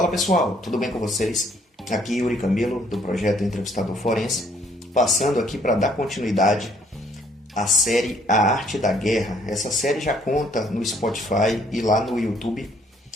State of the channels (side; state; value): both; normal; correlation 0.64